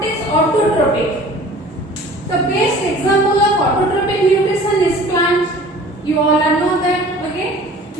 is autotrophic? The best example of autotrophic nutrition is plant. You all know that. Okay,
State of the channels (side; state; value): both; normal; correlation 0.46